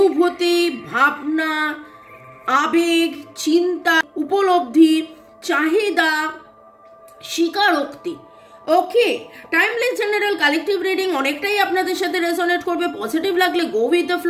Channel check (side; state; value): both; identical; correlation 1.00